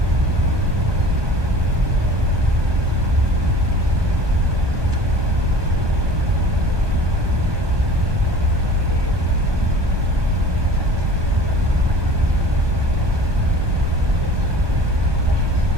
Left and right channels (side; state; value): left; late; 1.2 ms